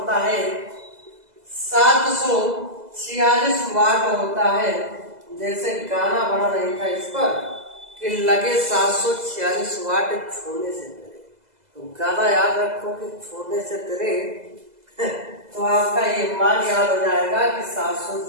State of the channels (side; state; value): left; late; 2.0 ms